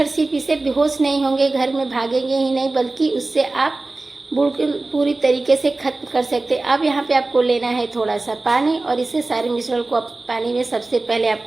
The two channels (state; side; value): quieter; left; 3.2 dB